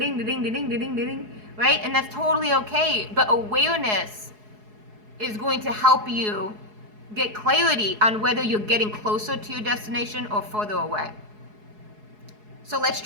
ding, ding, ding, ding, ding, right? And that's totally okay. But awareness is going to help you get clarity on whether you're getting closer to your destination or further away. So let's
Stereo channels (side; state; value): left; late; 4.7 ms